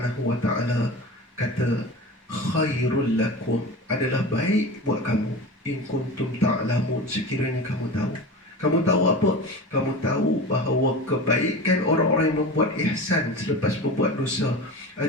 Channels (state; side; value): normal; both; correlation 0.31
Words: Wa Taala kata khairul lakum, adalah baik buat kamu, in kuntum ta'lamun, sekiranya kamu tahu. Kamu tahu apa? Kamu tahu bahawa kebaikan orang-orang yang membuat ihsan selepas berbuat dosa